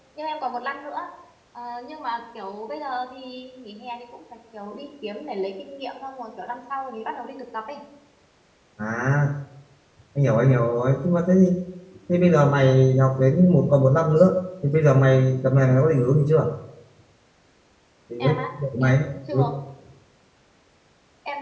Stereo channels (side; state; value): both; identical; correlation 1.00